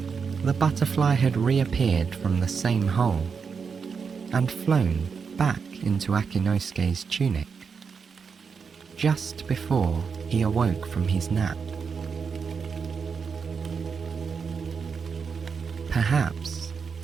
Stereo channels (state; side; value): quieter; left; 5.8 dB